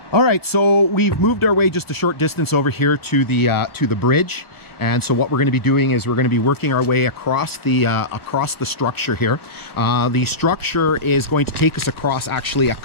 All right, so we've moved our way just a short distance over here to the bridge, and so what we're going to be doing is we're going to be working our way across the structure here. The structure is going to take us across actually a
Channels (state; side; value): late; right; 1.2 ms